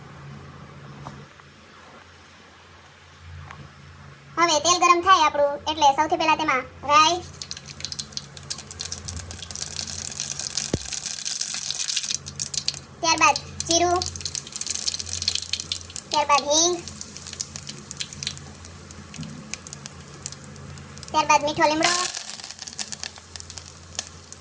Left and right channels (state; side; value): identical; both; correlation 1.00